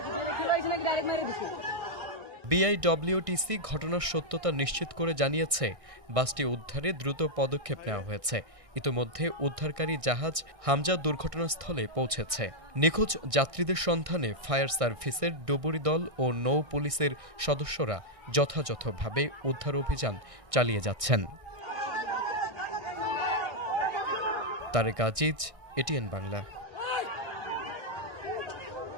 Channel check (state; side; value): late; left; 1.6 ms